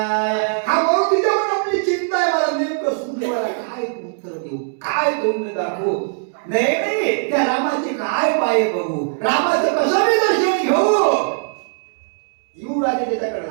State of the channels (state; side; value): silent; left; digital silence